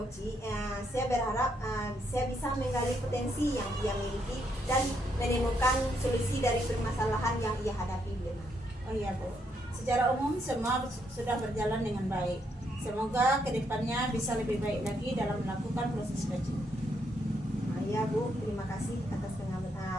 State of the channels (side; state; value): both; normal; correlation 0.75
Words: saya berharap saya bisa menggali potensi yang ia miliki dan menemukan solusi dari permasalahan yang ia hadapi. Oh iya Bu, secara umum semua sudah berjalan dengan baik. Semoga kedepannya bisa lebih baik lagi dalam melakukan proses coaching. Ya Bu, terima kasih atas